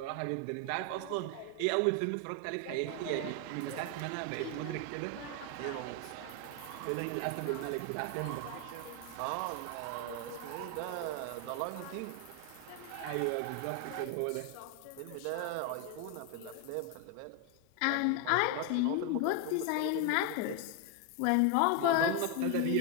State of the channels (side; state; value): both; different; correlation 0.01